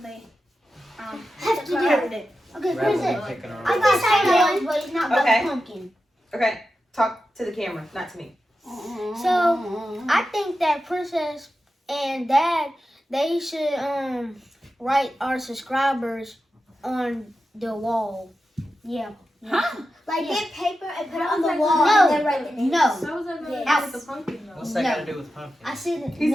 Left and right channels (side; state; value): both; normal; correlation 0.91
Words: they have to do. it. Okay, Rather where's than it? picking our I own. got ideas, but it's not about Okay. the pumpkin. Okay, talk to the camera, not to me. So I think that Princess and Dad, they should write our subscribers on the wall. Yeah. Huh? Like get paper and put it on the wall and then write the names. No. So was that going Yes. with the pumpkin though? What's that No. got to do with pumpkin? I said it, He